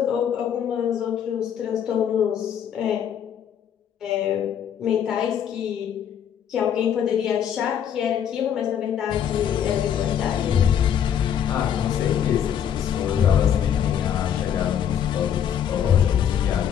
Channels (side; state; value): right; quieter; 9.0 dB